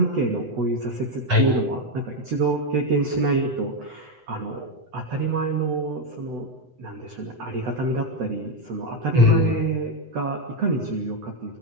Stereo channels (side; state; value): left; late; 7.9 ms